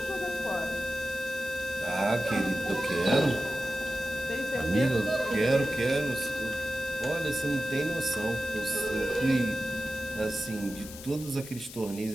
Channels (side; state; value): left; noise; hiss, 14 dB below the sound